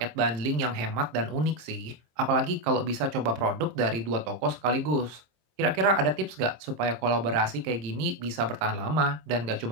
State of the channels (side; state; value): left; late; 26 ms